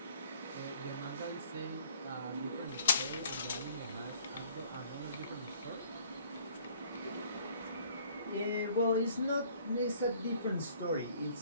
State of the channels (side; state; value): both; inverted; correlation -0.58